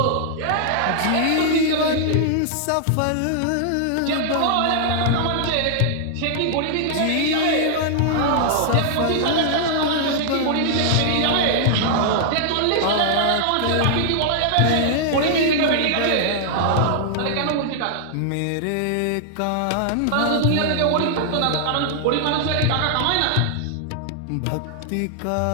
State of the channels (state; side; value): different; both; correlation -0.01